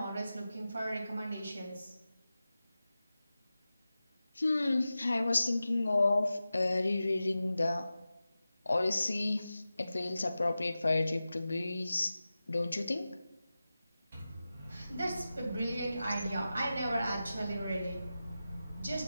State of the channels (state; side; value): inverted; both; correlation -0.94